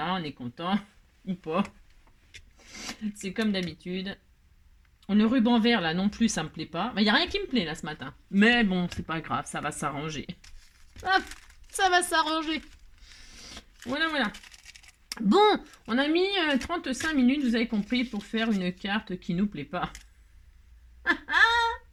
est content. Ou pas. C'est comme d'habitude. Le ruban vert, là, non plus, ça me plaît pas. Il n'y a rien qui me plaît, là, ce matin. Mais bon, c'est pas grave, ça va s'arranger. Hop, ça va s'arranger. Voilà. Bon, on a mis 35 minutes, vous avez compris, pour faire une carte qui nous plaît pas.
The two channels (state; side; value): identical; both; correlation 1.00